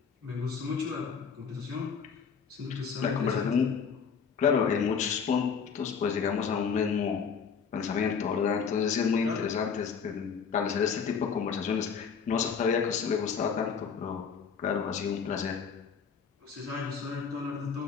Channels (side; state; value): right; quieter; 6.3 dB